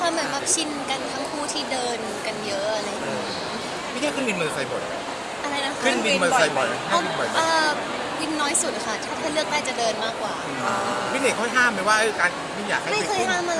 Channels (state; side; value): identical; both; correlation 1.00